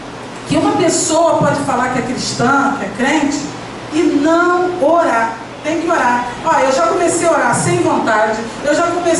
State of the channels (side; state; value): both; identical; correlation 1.00